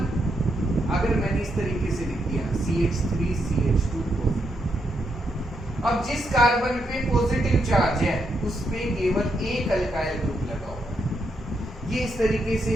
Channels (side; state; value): both; normal; correlation 0.80